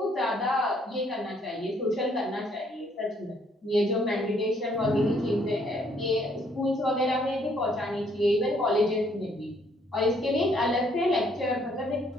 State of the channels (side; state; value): both; normal; correlation 0.66